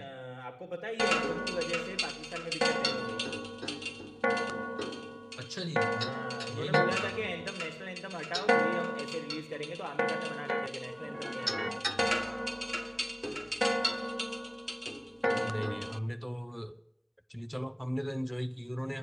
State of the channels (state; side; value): identical; both; correlation 1.00